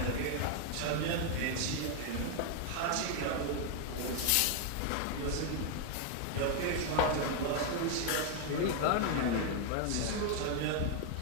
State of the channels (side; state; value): both; different; correlation 0.00